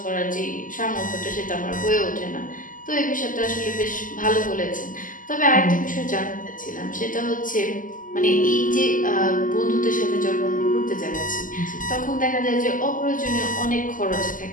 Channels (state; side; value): late; right; 0.38 ms